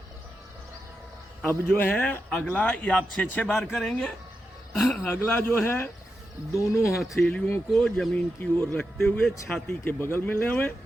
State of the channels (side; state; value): both; normal; correlation 0.88